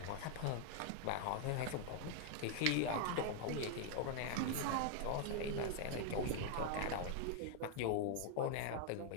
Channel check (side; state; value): both; different; correlation 0.00